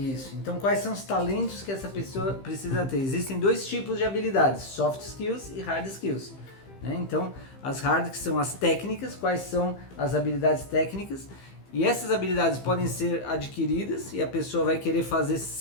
Então, quais são os talentos que essa pessoa precisa ter? Existem dois tipos de habilidades, soft skills e hard skills. Né? Então, as hard, que são as técnicas, quais são as habilidades técnicas? E essas habilidades podem ser adquiridas e a pessoa vai querer fazer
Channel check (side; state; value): right; late; 15 ms